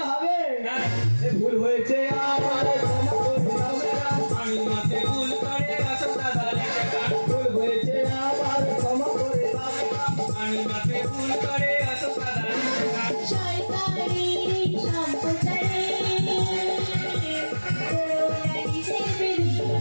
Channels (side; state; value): both; inverted; correlation -1.00